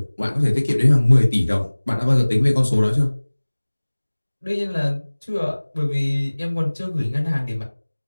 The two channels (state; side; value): inverted; both; correlation -1.00